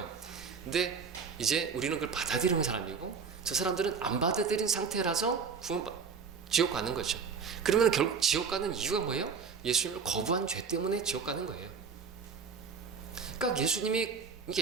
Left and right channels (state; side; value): quieter; left; 5.9 dB